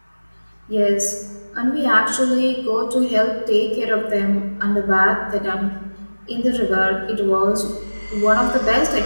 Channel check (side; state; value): both; inverted; correlation -1.00